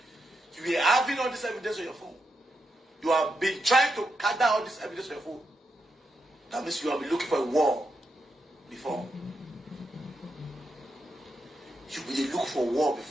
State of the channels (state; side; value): normal; both; correlation 0.84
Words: You are having all this evidence on your phone. You have been trying to gather all this evidence on your phone. That means you have been looking for a war before. You will look for war